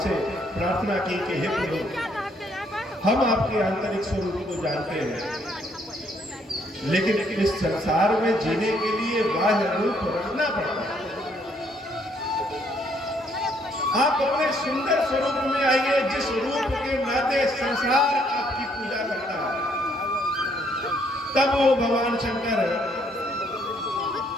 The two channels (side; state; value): both; normal; correlation 0.68